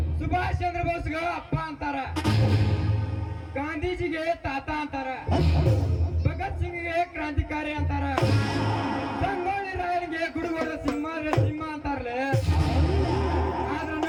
ಸುಭಾಷ್ ಚಂದ್ರ ಬೋಸ್ಗ ಅಪ್ಪ ಅಂತಾರ, ಗಾಂಧೀಜಿಗೆ ತಾತ ಅಂತಾರ, ಭಗತ್ ಸಿಂಗ್ಗೆ ಕ್ರಾಂತಿಕಾರಿ ಅಂತಾರ, ಸಂಗೊಳ್ಳಿ ರಾಯನಿಗೆ ಗುಡುಗೋಡ ಸಿಂಹ ಅಂತಾರಲೆ. ಆದ್ರೆ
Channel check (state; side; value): identical; both; correlation 1.00